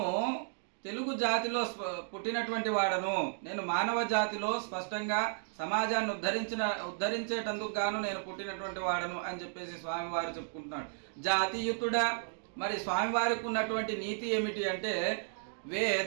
తెలుగు జాతిలో పుట్టినటువంటి వాడను. నేను మానవ జాతిలో స్పష్టంగా సమాజాన్ని ఉద్ధరించేటందుకు గాను నేను పుట్టినటువంటి వాడను అని చెప్పేసి స్వామివారు చెప్పుకుంటున్నాడు. జాతియుతుడా, మరి స్వామివారికి ఉన్నటువంటి నీతి ఏమిటి అంటే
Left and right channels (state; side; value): silent; left; digital silence